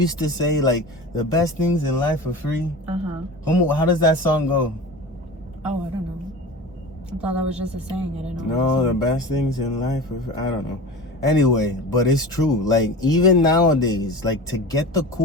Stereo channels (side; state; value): both; normal; correlation 0.33